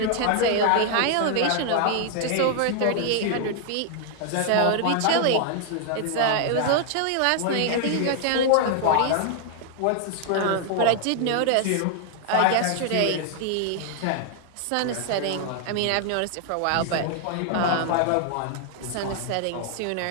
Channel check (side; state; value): both; different; correlation 0.00